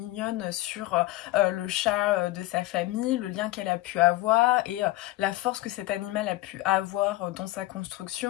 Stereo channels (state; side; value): quieter; right; 17.6 dB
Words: sur le chat de sa famille, le lien qu'elle a pu avoir et la force que cet animal a pu avoir dans sa